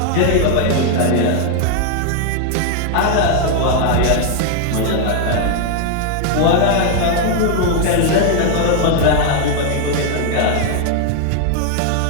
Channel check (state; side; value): different; both; correlation 0.00